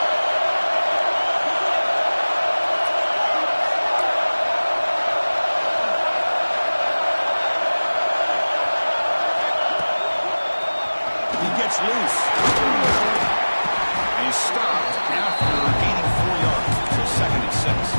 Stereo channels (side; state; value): both; inverted; correlation -1.00